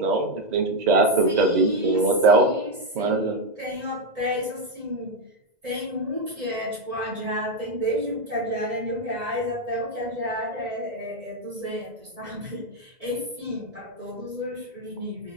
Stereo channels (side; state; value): left; late; 2.0 ms